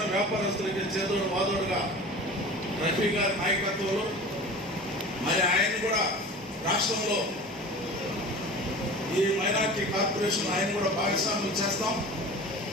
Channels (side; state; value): both; normal; correlation 0.37